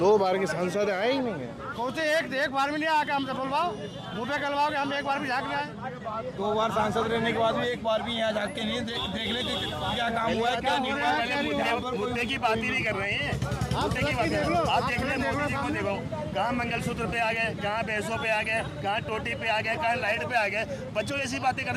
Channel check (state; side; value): identical; both; correlation 1.00